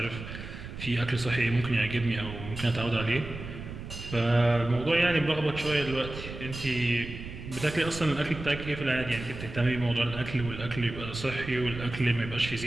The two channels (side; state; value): right; noise; rumble, 10 dB below the sound